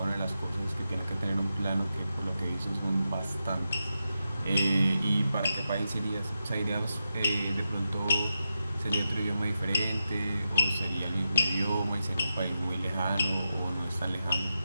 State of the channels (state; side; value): inverted; both; correlation -0.89